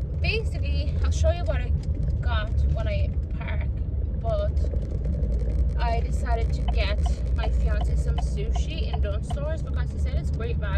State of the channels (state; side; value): identical; both; correlation 1.00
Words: basically I'll show you what I got when I park, but I decided to get my fiance some sushi in Dunn stores because he said it's great